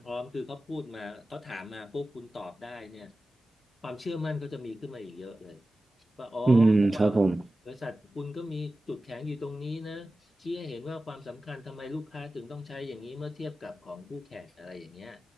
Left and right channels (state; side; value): normal; both; correlation 0.95